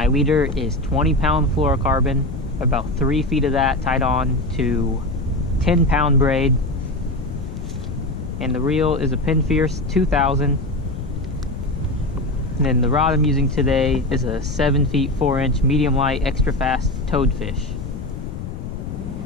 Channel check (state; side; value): noise; left; rumble, 8 dB below the sound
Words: leader is 20-pound fluorocarbon, about 3 feet of that tied on to 10-pound braid. And the reel is a Pinfierce 2000. And then the rod I'm using today is a 7 feet 4-inch medium light extra fast toadfish.